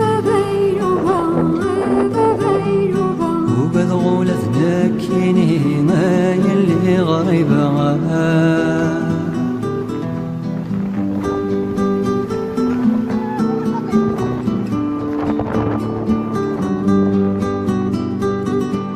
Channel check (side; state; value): both; identical; correlation 1.00